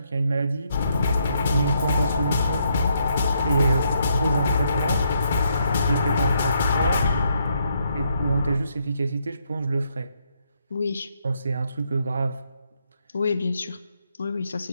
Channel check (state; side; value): inverted; both; correlation -0.75